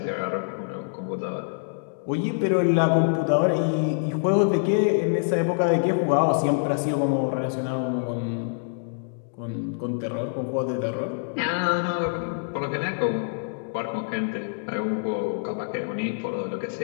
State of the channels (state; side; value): silent; right; digital silence